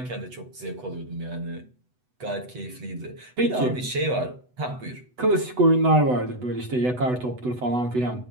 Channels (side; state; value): left; late; 8.0 ms